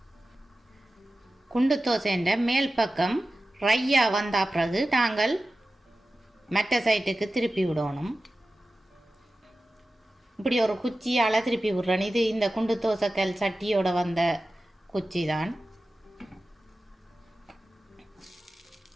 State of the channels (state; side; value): normal; both; correlation 0.94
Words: குண்டு தோசைன்ற மேல் பக்கம் ரையாக வந்த பிறகு நாங்கள் மற்ற சைட்டுக்கு திருப்பி விடணும். இப்படி ஒரு குச்சியால் திருப்பி விடுறேன். இது இந்த குண்டு தோசைக்கல் சட்டியோட வந்த குச்சி தான்.